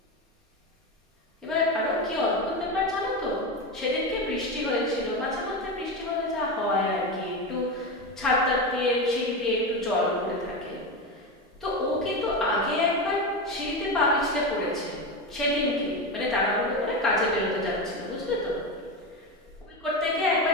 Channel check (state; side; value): normal; both; correlation 0.18